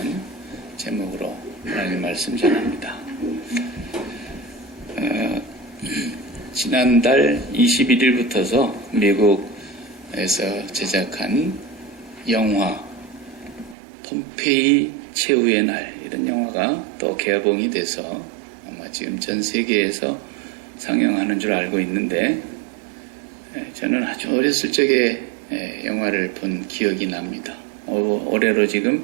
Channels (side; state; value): left; drops out; at 13.8 s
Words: 제목으로 하나님 말씀 전합니다. 지난달 21일부터서 미국에서 제작한 영화 폼페이 최후의 날, 이런 영화가 또 개봉이 돼서 아마 지금 전 세계에서 상영하는 줄 알고 있는데, 저는 아주 어렸을 적에 영화를 본 기억이 납니다. 올해로